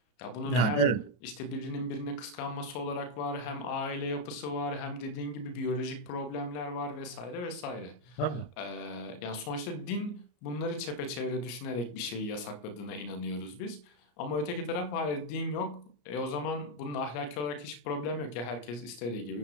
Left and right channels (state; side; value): late; right; 34 ms